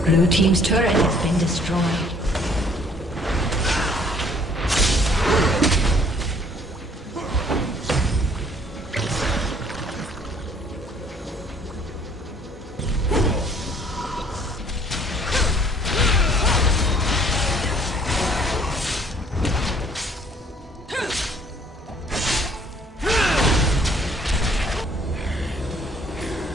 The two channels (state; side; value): normal; both; correlation 0.59